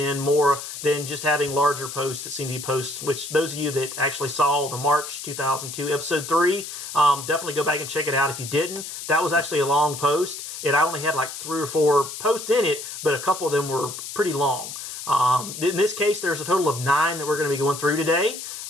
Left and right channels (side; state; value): left; noise; hiss, 9 dB below the sound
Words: more than just having larger posts that seem to be posts, which those of you that actually saw the March 2002 episode 3, definitely go back and check it out if you didn't. That was actually a long post. I only had like 3 or 4 posts in it, but a couple of them were pretty long. In this case, there's a total of 9 that we're going to be going through today.